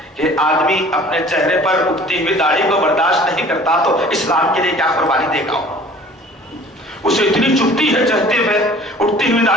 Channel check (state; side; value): normal; both; correlation 0.48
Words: کہ آدمی اپنے چہرے پر اگتی ہوئی داڑھی کو برداشت نہیں کرتا تو اسلام کے لیے کیا قربانی دے گا. اسے اتنی چبھتی ہے چہتے ہوئے اٹھتی ہوئی